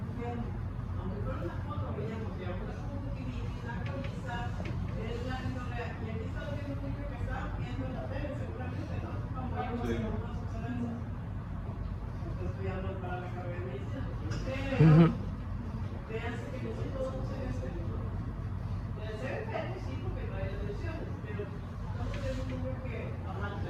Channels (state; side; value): identical; both; correlation 1.00